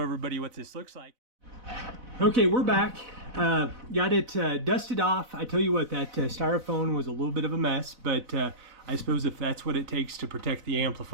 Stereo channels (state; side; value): late; left; 4.0 ms